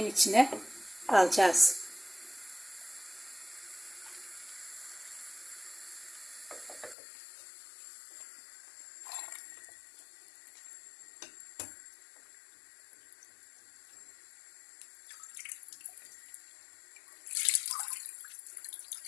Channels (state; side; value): drops out; right; at 7.0 s